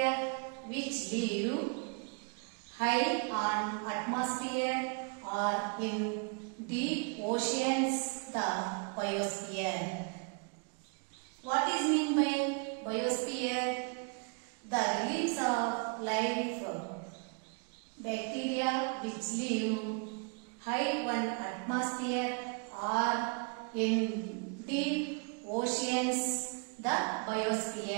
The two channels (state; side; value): quieter; left; 37.9 dB